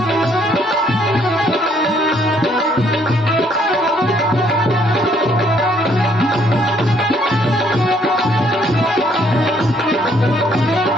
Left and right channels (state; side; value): normal; both; correlation 0.66